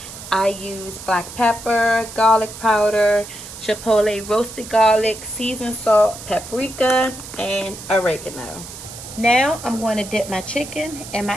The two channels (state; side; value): noise; right; hiss, 13 dB below the sound